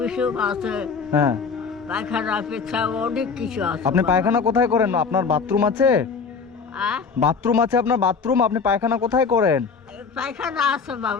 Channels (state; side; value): quieter; right; 5.3 dB